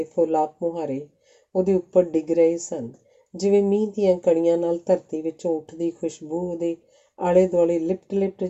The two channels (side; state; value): both; identical; correlation 1.00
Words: ਫੁੱਲ ਆਪ ਮੁਹਾਰੇ ਉਹਦੇ ਉੱਪਰ ਡਿੱਗ ਰਹੇ ਸਨ, ਜਿਵੇਂ ਮੀਂਹ ਦੀਆਂ ਕਣੀਆਂ ਨਾਲ ਧਰਤੀ ਵਿੱਚੋਂ ਉੱਠਦੀ ਖੁਸ਼ਬੂ ਉਹਦੇ ਆਲੇ ਦੁਆਲੇ ਲਿਪਟ ਲਿਪਟ